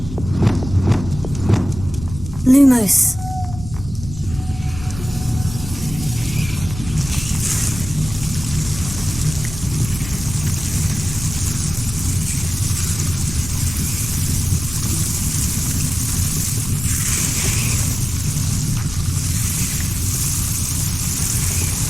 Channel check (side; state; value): both; normal; correlation 0.96